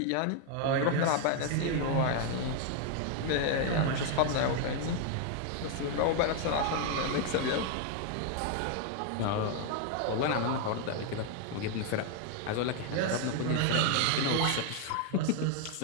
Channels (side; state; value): both; different; correlation 0.00